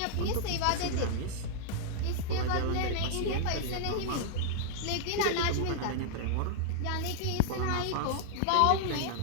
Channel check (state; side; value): different; both; correlation -0.01